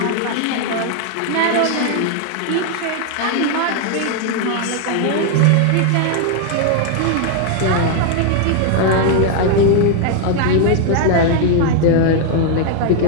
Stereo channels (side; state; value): both; different; correlation 0.00